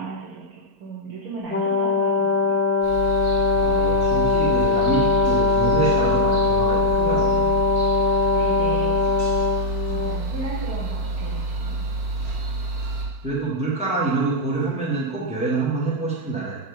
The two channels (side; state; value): left; late; 4.5 ms